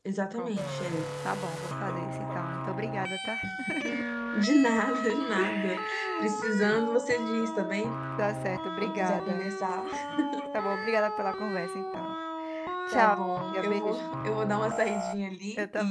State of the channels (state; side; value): identical; both; correlation 1.00